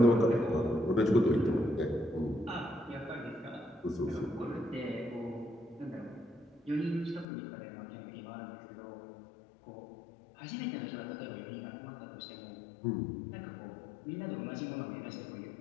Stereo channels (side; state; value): right; drops out; at 7.2 s